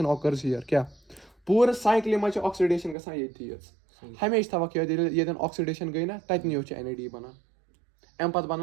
آکٲرٕز ہِیَر کیٛاہ پوٗرٕ سایکلہِ منٛز چھِ آکسِڈیشن گژھان ییٚتھی یٲژ ہمیشہٕ تھاوکھ یاد ییٚتٮ۪ن آکسِڈیشن گٔے نہ تَتنٕے یوت چھِ NAD بَنان اَمہِ پَتہٕ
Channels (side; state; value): left; drops out; at 3.0 s